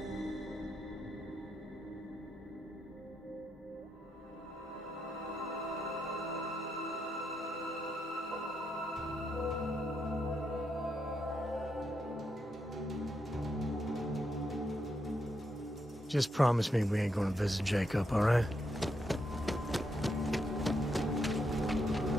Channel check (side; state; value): both; normal; correlation 0.81